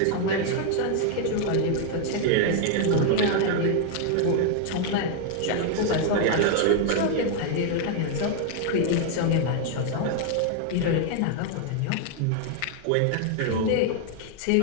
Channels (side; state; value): both; different; correlation 0.00